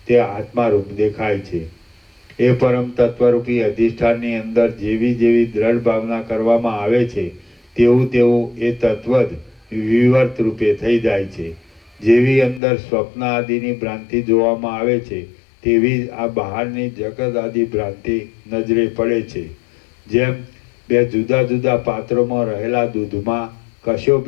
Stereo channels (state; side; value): drops out; right; at 12.6 s